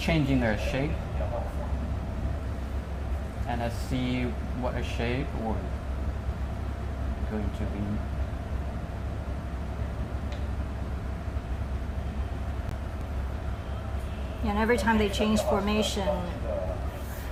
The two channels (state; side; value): identical; both; correlation 1.00